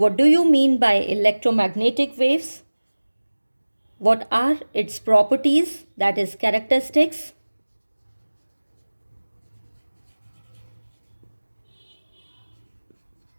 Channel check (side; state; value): both; inverted; correlation -1.00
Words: do you mean by electromagnetic waves, what are its properties, that is characteristics.